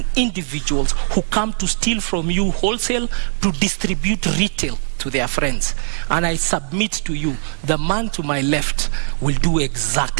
individuals who come to steal from you wholesale to distribute retail to their friends. And I submit to you, the man to my left will do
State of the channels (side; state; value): left; silent; digital silence